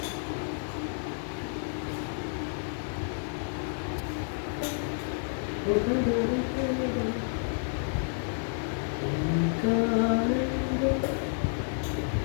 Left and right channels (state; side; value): silent; right; 58 dB below the other